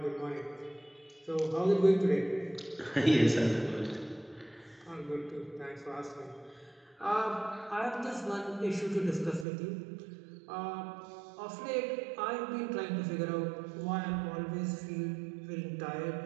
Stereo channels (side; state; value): left; drops out; at 9.5 s